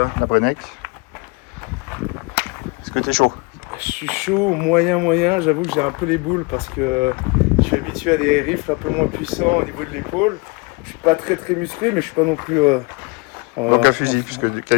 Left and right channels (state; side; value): quieter; right; 28.6 dB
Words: Brenneck. Est-ce que tu es chaud? Je suis chaud, moyen. J'avoue que j'ai un peu les boules parce que je suis habitué à des rifles un peu moins puissants au niveau de l'épaule. Je suis pas très musclé, mais je suis pas non plus. Donc un fusil, puisque